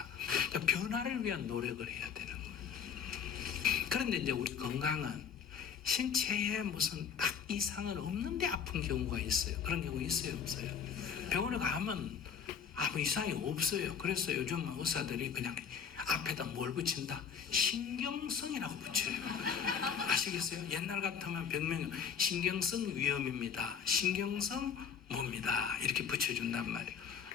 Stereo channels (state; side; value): quieter; right; 7.2 dB